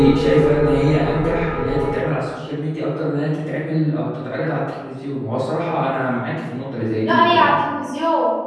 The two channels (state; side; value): identical; both; correlation 1.00